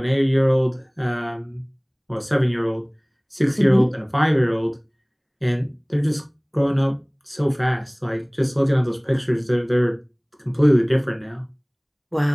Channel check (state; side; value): identical; both; correlation 1.00